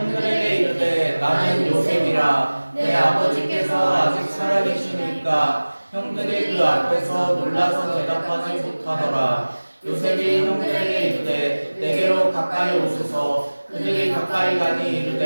이르되 나는 요셉이라 내 아버지께서 아직 살아계시니까 형들이 그 앞에서 놀라서 대답하지 못하더라. 요셉이 형들에게 이르되 내게로 가까이 오소서. 그들이 가까이 가니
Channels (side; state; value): both; inverted; correlation -1.00